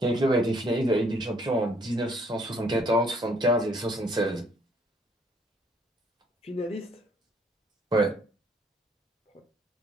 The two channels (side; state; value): both; normal; correlation 0.64